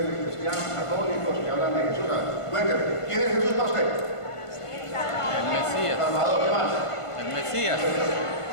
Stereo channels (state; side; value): late; right; 1.5 ms